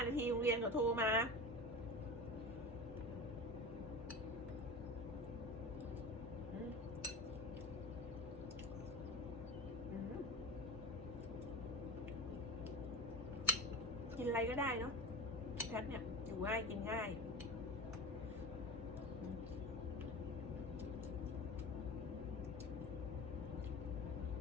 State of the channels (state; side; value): normal; both; correlation 0.29